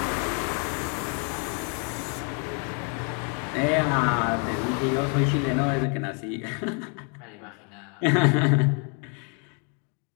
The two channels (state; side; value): quieter; right; 38.0 dB